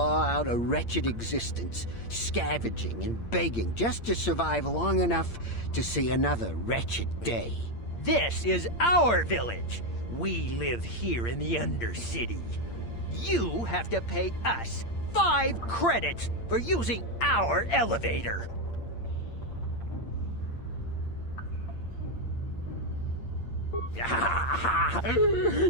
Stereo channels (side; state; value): right; late; 8.7 ms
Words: out a wretched existence, scavenging and begging just to survive long enough to see another wretched day. This is our village. We live here in the Undercity. You have to pay us 5 credits for using our elevator.